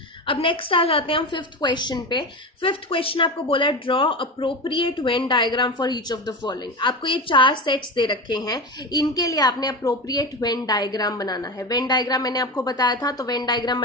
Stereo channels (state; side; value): normal; both; correlation 0.23